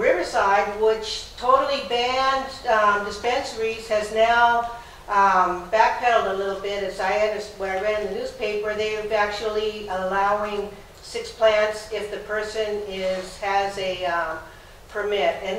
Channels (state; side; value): identical; both; correlation 1.00